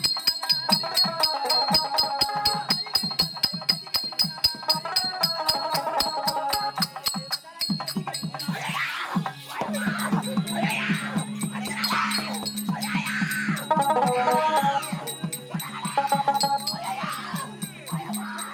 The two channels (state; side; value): identical; both; correlation 1.00